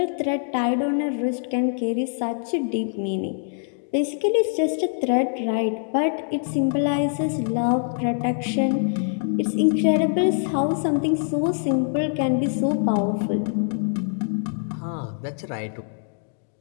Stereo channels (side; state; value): right; silent; 63 dB below the other